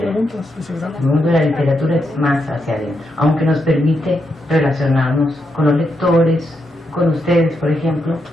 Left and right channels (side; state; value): both; normal; correlation 0.82